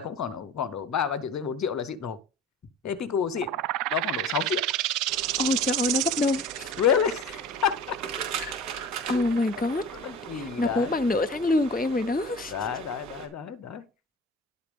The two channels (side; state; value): both; normal; correlation 0.37